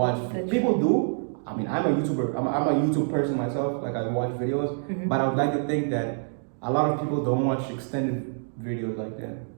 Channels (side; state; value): left; silent; digital silence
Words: People do. I mean, I'm a YouTuber. I'm a YouTube person myself. Like I watch videos, but I would like to think that a lot of people don't watch extended videos like that.